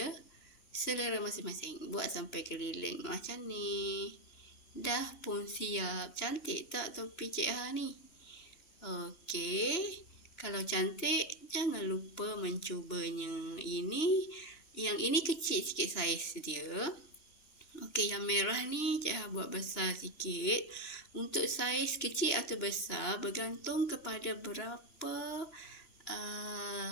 selera masing-masing. Buat sampai keliling macam ni. Dah pun siap. Cantik tak topi Cik Ha ni? Okey. Kalau cantik, jangan lupa mencubanya. Yang ini kecil sikit saiz dia. Okey, yang merah ni Cik Ha buat besar sikit. Untuk saiz kecil atau besar bergantung kepada berapa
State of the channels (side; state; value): right; late; 3.1 ms